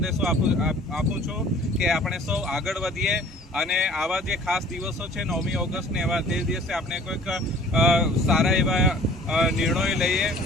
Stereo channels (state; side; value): normal; both; correlation 0.50